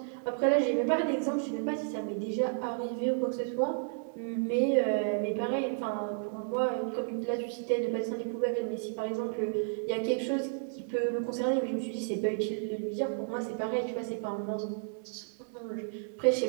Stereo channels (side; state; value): left; silent; digital silence